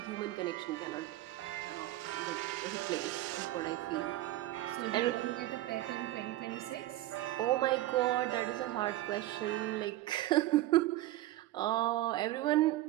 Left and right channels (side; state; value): left; quieter; 16.0 dB